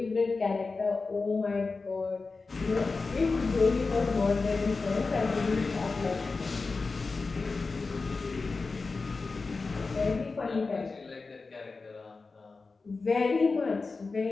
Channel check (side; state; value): right; quieter; 4.1 dB